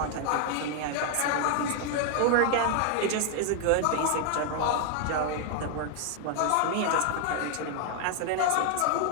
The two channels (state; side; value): different; both; correlation 0.00